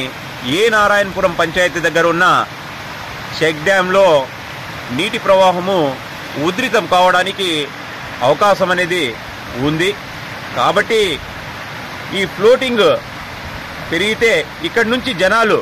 ఏ నారాయణపురం పంచాయతీ దగ్గర ఉన్న చెక్ డ్యాంలో నీటి ప్రవాహము ఉధృతం కావడానికి అవకాశం అనేది ఉంది. కాబట్టి ఈ ఫ్లోటింగ్ పెరిగితే ఇక్కడి నుంచి జనాలు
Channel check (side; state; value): both; identical; correlation 1.00